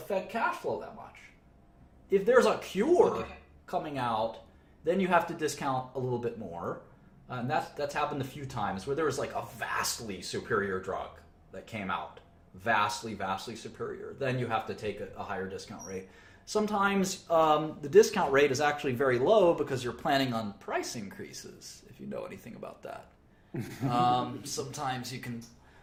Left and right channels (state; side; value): identical; both; correlation 1.00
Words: cash flow that much. If there's a cure coming out, then you have to discount a little bit more. And that's happened a few times where there was like a vastly superior drug that came out. Vastly superior. Then you have to take a higher discount rate. Sometimes the discount rate is actually very low because you're planning on price increases, if you know anything about that. Sometimes you can